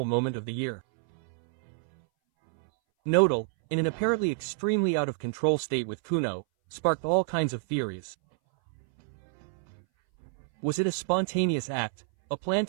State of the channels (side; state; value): left; silent; 59 dB below the other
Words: moment of the year. Nodal, in an apparently extremely out-of-control state with Kuno, sparked all kinds of theories. Was it a spontaneous act, a plan